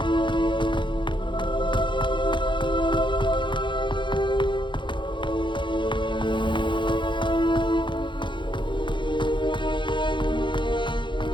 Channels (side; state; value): right; late; 0.23 ms